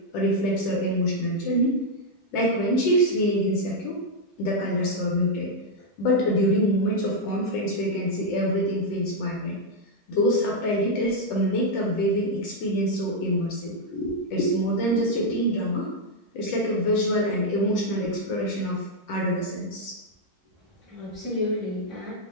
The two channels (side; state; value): both; normal; correlation -0.01